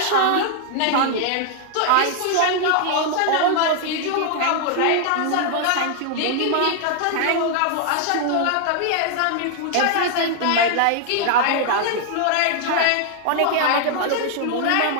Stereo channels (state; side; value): different; both; correlation 0.00